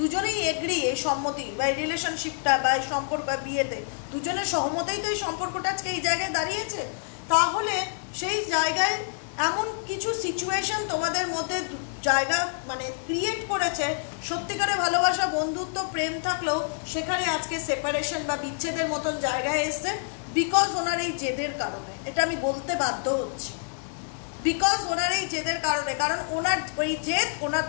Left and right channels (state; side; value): silent; right; 57 dB below the other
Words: এগ্রি, এই সম্মতি বা এই রিলেশনশিপটা বা এই সম্পর্ক বিয়েতে দুজনের সহমতেই তো এই সম্পর্কটা আজকে এই জায়গায় দাঁড়িয়েছে। তাহলে সেই জায়গায় এমন কিছু সিচুয়েশন তোমাদের মধ্যে জায়গা মানে ক্রিয়েট করেছে, সত্যিকারে ভালোবাসা, বন্ধুত্ব, প্রেম থাকলেও সেখানে আজকে সেপারেশন বা বিচ্ছেদের মতন জায়গায় এসছে, বিকজ ওনার এই জেদের কারণে। এটা আমি বলতে বাধ্য হচ্ছি, বিকজ ওনার এই জেদের কারণে, কারণ ওনার ওই জেদ ওনার